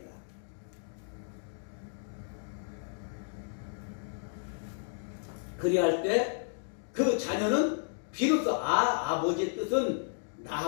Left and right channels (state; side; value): silent; right; digital silence